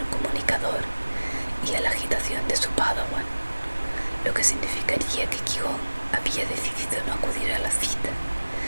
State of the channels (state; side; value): inverted; both; correlation -1.00